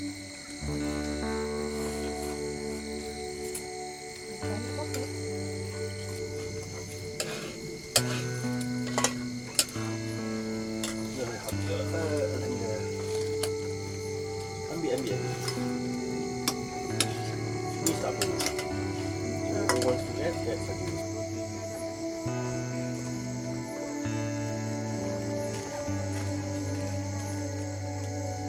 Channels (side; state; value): both; identical; correlation 1.00